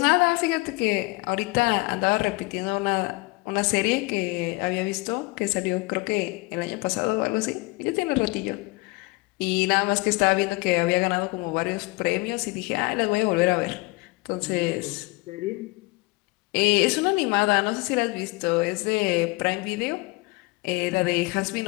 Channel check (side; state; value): right; quieter; 24.6 dB